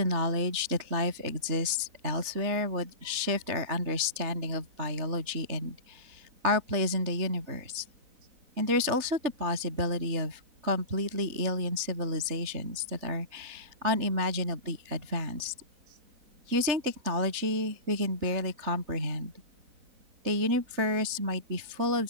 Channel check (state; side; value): late; left; 3.4 ms